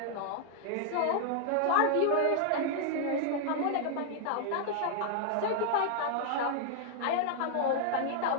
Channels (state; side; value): different; both; correlation -0.01